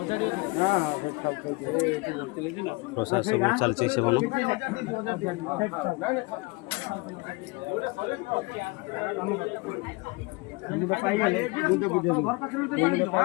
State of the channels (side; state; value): right; quieter; 25.8 dB